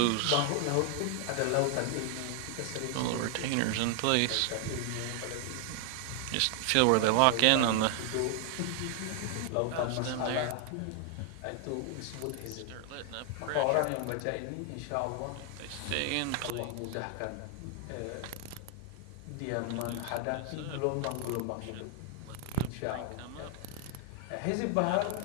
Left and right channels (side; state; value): both; different; correlation 0.00